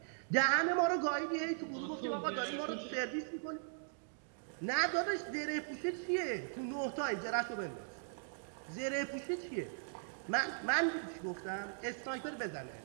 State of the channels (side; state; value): left; silent; digital silence